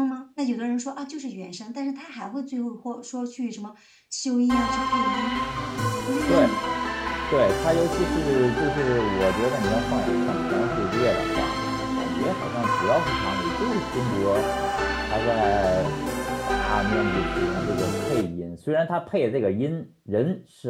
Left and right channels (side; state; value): both; identical; correlation 1.00